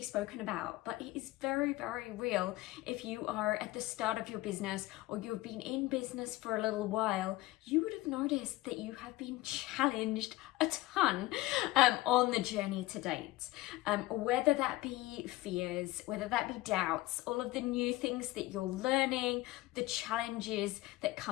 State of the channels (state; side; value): quieter; right; 18.5 dB